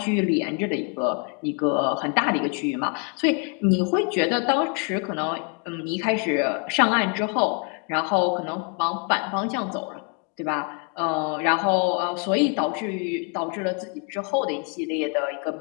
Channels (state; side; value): quieter; right; 38.4 dB